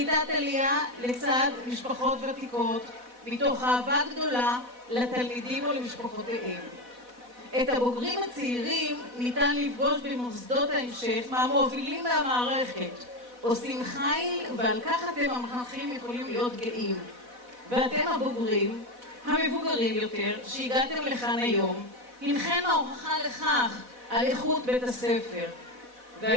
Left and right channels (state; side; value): late; left; 4.1 ms